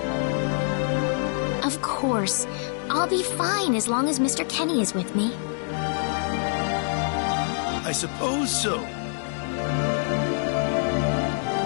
Of course. I'll be fine as long as Mr. Kenny is with me. I suppose so.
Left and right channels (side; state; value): right; silent; digital silence